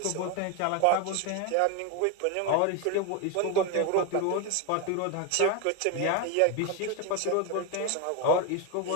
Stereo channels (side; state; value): both; different; correlation 0.02